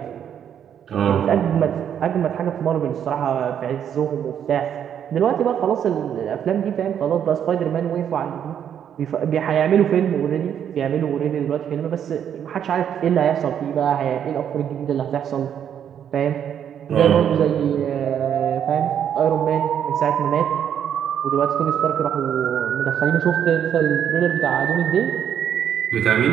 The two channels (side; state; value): left; quieter; 9.0 dB